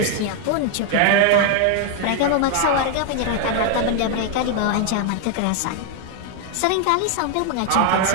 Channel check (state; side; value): different; both; correlation 0.00